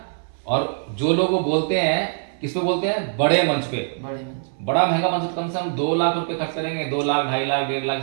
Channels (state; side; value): silent; left; 64 dB below the other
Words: और जो लोग वो बोलते हैं, किस पे बोलते हैं? बड़े मंच पे, बड़ा महंगा मंच, कम से कम 2 लाख रुपए खर्च करेंगे, 2 लाख, 2.5 लाख, 1.5 लाख